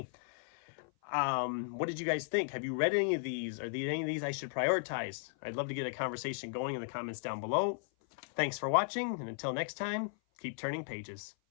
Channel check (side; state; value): right; silent; 54 dB below the other